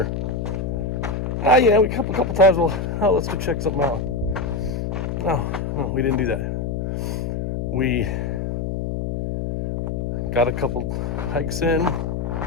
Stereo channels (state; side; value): noise; left; hum, 2 dB below the sound